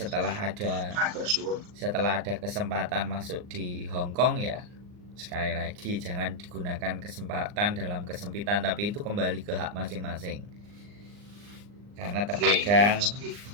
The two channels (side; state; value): left; late; 39 ms